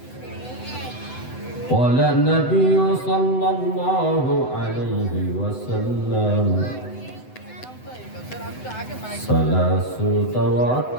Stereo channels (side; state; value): right; late; 7.9 ms